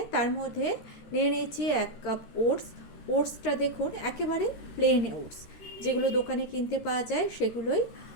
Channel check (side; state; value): right; late; 13 ms